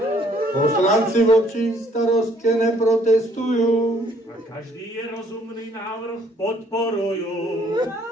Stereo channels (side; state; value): both; normal; correlation 0.63